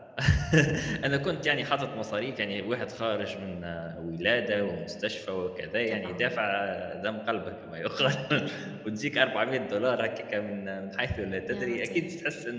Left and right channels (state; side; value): identical; both; correlation 1.00